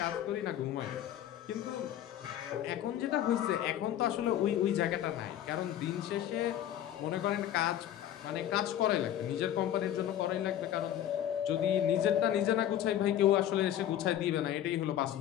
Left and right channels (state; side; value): quieter; right; 11.4 dB